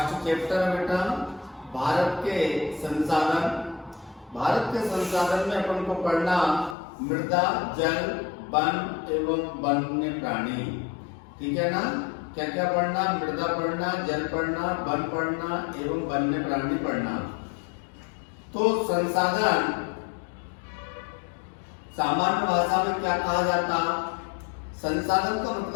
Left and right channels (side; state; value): right; drops out; at 6.8 s